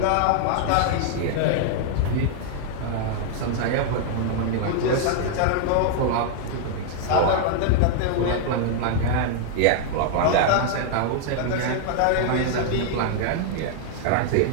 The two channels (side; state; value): both; different; correlation 0.00